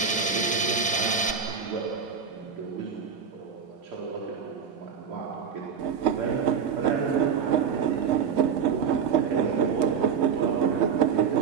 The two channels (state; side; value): quieter; left; 6.7 dB